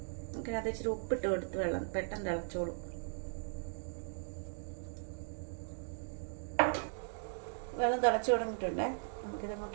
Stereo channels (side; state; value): left; silent; digital silence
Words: നമുക്കിനകത്ത് ഇച്ചിരി ഉപ്പിട്ട് കൊടുത്ത് വെള്ളം പെട്ടെന്ന് തിളച്ചോളും. വെള്ളം തിളച്ച് തുടങ്ങിയിട്ടുണ്ടേ,